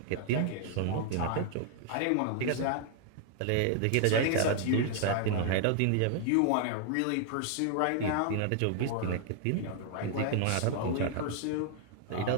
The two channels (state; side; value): different; both; correlation 0.00